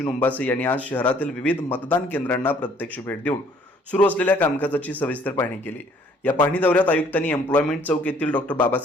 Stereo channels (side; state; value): both; normal; correlation 0.60